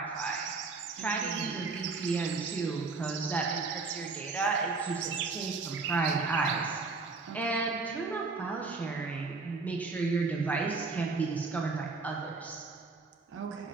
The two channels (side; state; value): left; quieter; 4.1 dB